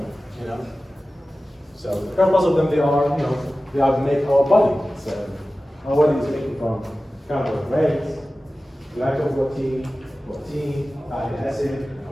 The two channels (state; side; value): normal; both; correlation 0.96